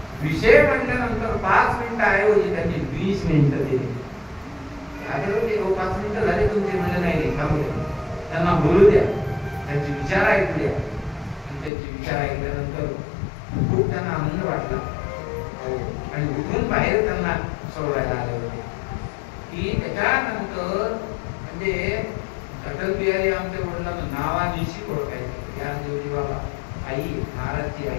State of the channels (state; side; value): drops out; right; at 11.7 s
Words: विषय मांडल्यानंतर 5 मिनिटं ऐवजी त्यांनी 20 मिनिटं दिली. आधी होते 5 मिनिटं झाले तुमचे, म्हणजे नाही थांबू द्या, त्यांना बोलू द्या, त्यांचे विचार ऐकू द्या. आणि त्यांचे विचार ऐकल्यानंतर खूप त्यांना आनंद वाटला आणि उठून बाहेर त्यांना सोडवायला आले होते. की त्याच्यानंतर म्हणजे अटल बिहारी आमच्या वडिलांना नावानिशी ओळखायचे. ज्ञानदेवजी बाबा, आई, महाराजची